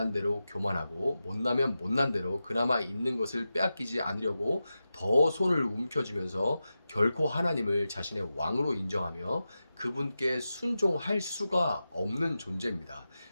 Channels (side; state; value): both; inverted; correlation -0.92